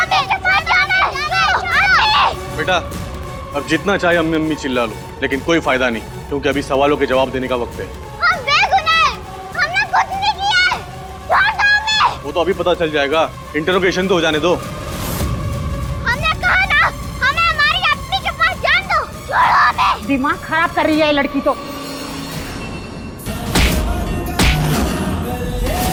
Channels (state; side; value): identical; both; correlation 1.00